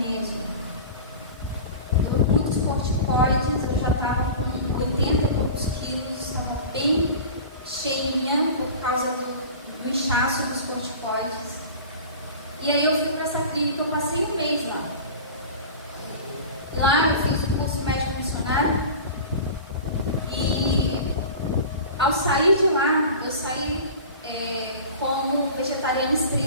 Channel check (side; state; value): both; inverted; correlation -0.36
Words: Muitos corticoides, eu já estava com 80 e poucos quilos, estava bem cheinha por causa do inchaço dos corticoides. E aí eu fui para essa clínica, eu passei um mês lá. Lá eu fiz o curso médico missionário e ao sair de lá, eu saí como vegetariana